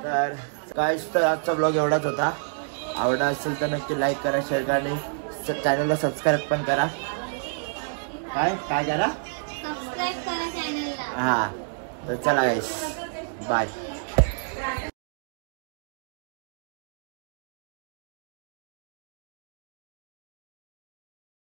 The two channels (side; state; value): left; silent; digital silence